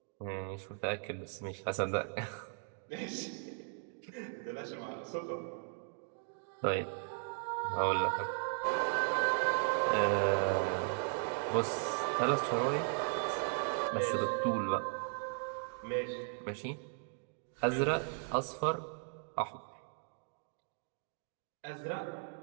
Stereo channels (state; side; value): silent; left; 53 dB below the other